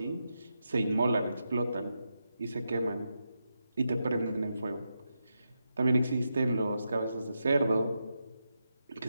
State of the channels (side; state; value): both; inverted; correlation -0.86